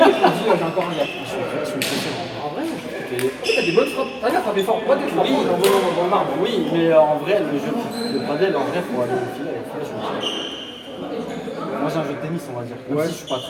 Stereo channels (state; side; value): identical; both; correlation 1.00